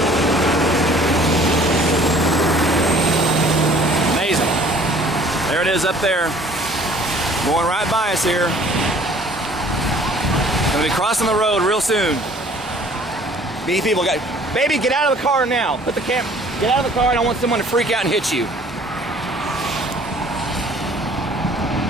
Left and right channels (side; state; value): both; normal; correlation 0.53